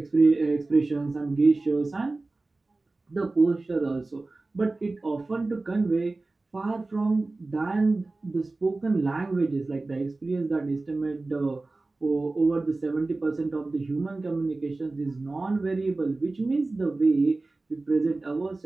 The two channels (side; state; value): left; quieter; 3.3 dB